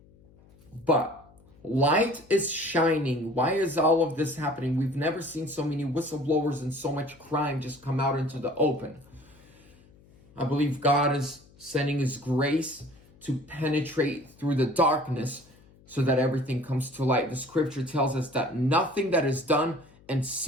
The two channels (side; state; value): left; noise; hum, 27 dB below the sound